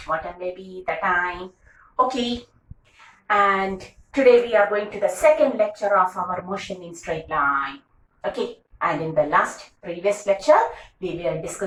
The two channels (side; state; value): both; identical; correlation 1.00